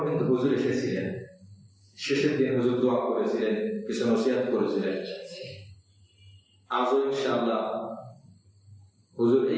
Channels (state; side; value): identical; both; correlation 1.00